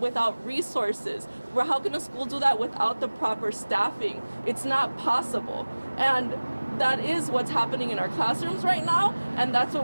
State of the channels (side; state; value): both; inverted; correlation -1.00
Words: resources? How can a school do that without the proper staffing? It's not possible. And that is what's happening in our classrooms right now, and that's